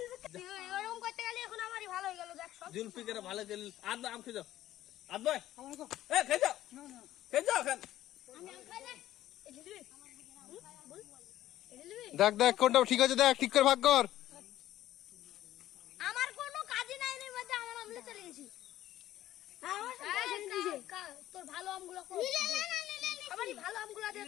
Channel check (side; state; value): right; quieter; 13.7 dB